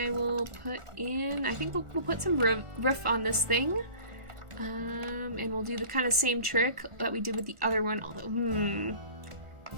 will put in, I think we'll put some roof on this thing. And we'll do the kind of same trick that we did with the other one, although,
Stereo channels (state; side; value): late; left; 1.4 ms